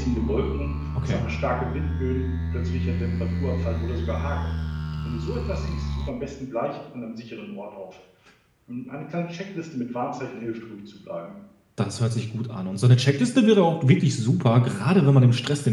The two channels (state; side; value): identical; both; correlation 1.00